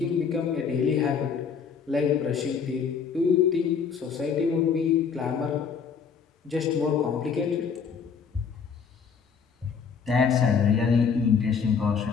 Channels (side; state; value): right; quieter; 6.3 dB